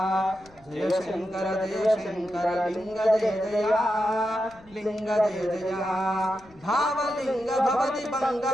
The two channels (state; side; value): noise; left; rumble, 26 dB below the sound